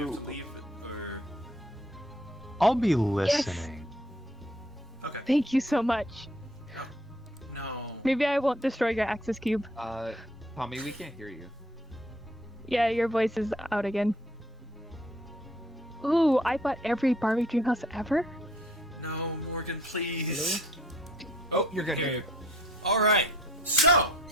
have Ooh. to leave? Or... I'll be listening. Okay. thank you so much. No. Maybe I won't destroy your access cube. Tommy, we can't hear you. Yeah, your voice is out again. Ooh, I bought every Barbie Dreamhouse ever? No, Morgan, please. Oh, you're good. Here. All right. So.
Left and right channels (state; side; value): normal; both; correlation 0.59